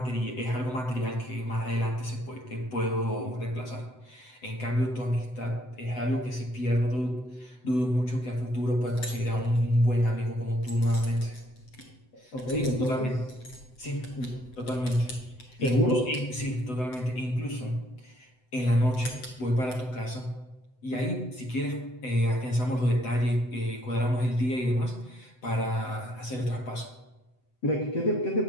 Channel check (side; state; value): right; late; 7.9 ms